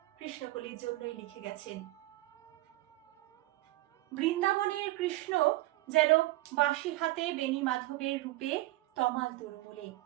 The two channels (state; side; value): quieter; left; 18.1 dB